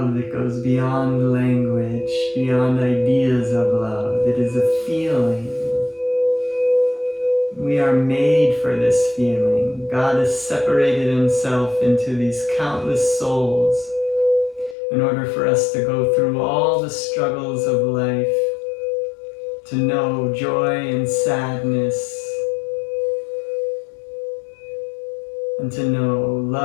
that goes beyond language, beyond ideas of love. It is a feeling. We are made for this feeling. God has separated himself into these countless souls in order for us to go through all the struggles of life, to know joy and sadness, and to know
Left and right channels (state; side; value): drops out; right; at 14.8 s